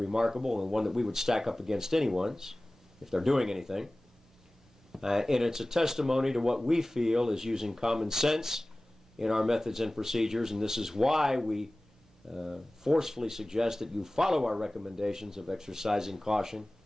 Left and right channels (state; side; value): normal; both; correlation 0.98